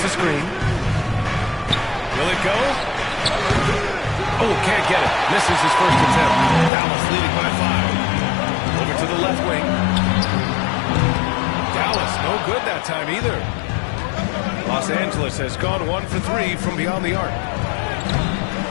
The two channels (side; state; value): right; drops out; at 6.7 s